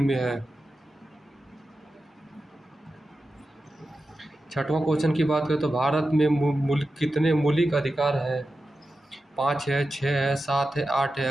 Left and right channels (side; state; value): both; normal; correlation 0.92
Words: में है। छठवां क्वेश्चन की बात करें तो भारत में कितने मौलिक अधिकार हैं? 5 है, 6 है, 7 है, 8 है।